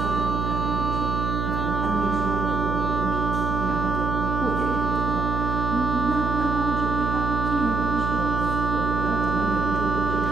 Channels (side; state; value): right; noise; hum, 2 dB below the sound